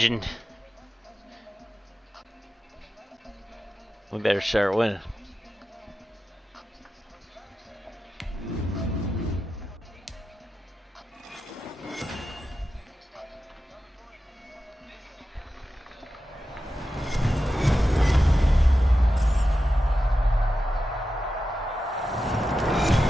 We better start winning.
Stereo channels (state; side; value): normal; both; correlation 0.91